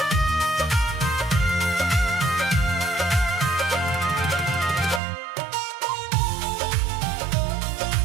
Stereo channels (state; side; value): drops out; left; at 5.0 s